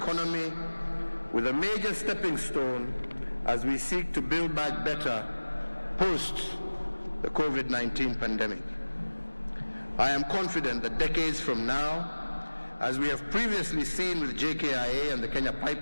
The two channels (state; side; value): inverted; both; correlation -1.00